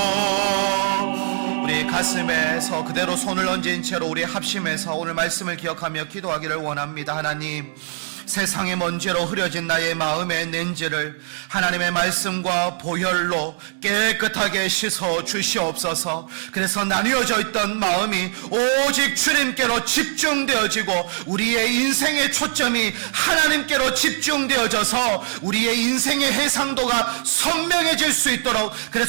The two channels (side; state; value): left; silent; digital silence